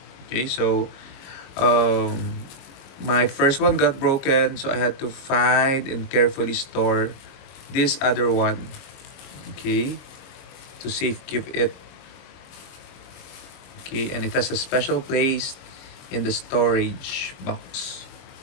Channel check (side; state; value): right; late; 22 ms